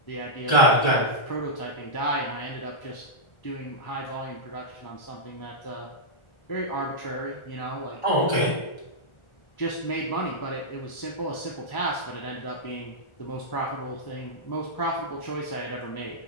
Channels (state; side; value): late; right; 1.4 ms